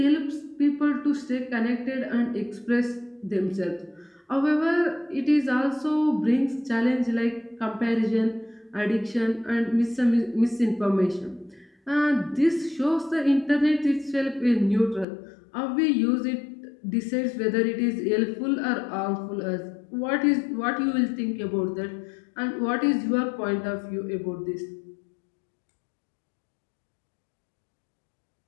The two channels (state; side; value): drops out; right; at 15.1 s